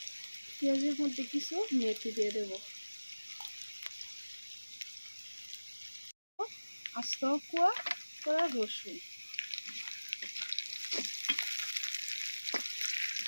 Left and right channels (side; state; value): both; inverted; correlation -1.00